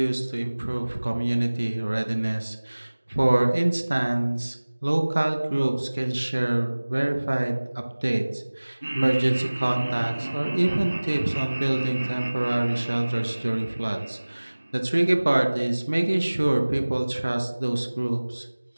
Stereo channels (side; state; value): both; inverted; correlation -1.00